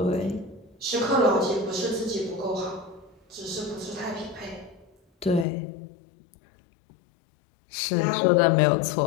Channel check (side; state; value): right; drops out; at 5.5 s